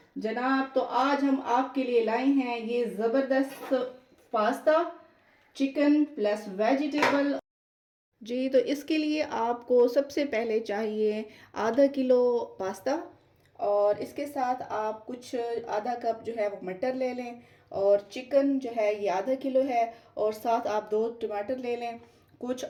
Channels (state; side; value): identical; both; correlation 1.00